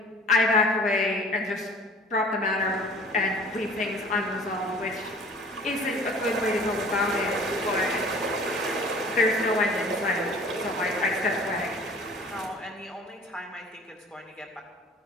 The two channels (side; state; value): both; normal; correlation 0.48